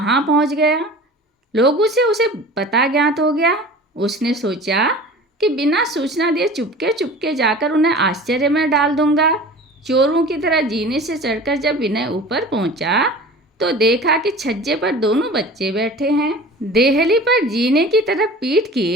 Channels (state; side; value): normal; both; correlation 0.40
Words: पहुंच गया। लोगों से उसे पता ज्ञात हो गया। उसने सोचा कि बिना सूचना दिए चुपके चुपके जाकर उन्हें आश्चर्य में डाल दूंगा। चोरों की तरह जीने से चढ़कर जब विनय ऊपर पहुंचा तो देखा कि छज्जे पर दोनों बच्चे बैठे हैं। देहली पर जीने की तरफ पीठ